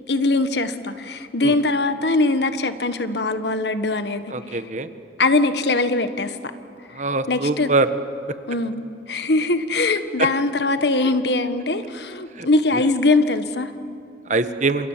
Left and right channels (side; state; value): both; normal; correlation 0.25